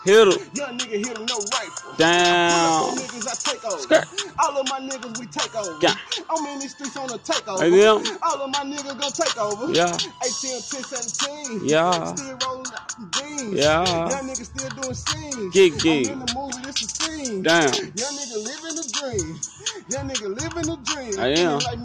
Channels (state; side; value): identical; both; correlation 1.00